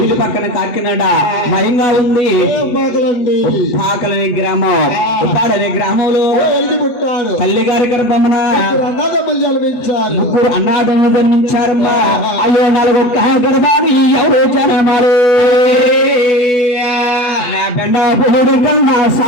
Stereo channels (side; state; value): right; late; 8.2 ms